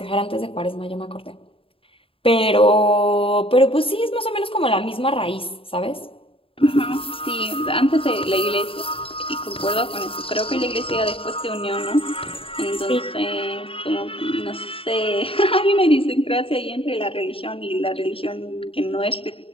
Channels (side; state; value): right; late; 0.27 ms